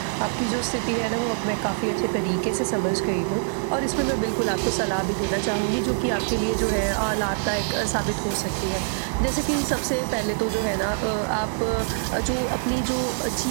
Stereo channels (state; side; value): silent; left; digital silence